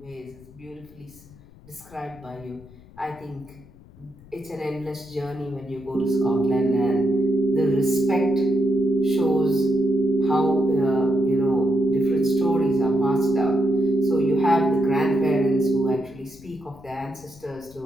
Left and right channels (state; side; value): noise; left; rumble, 23 dB below the sound